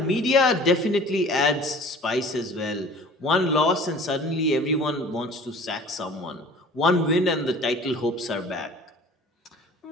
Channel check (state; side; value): normal; both; correlation 0.46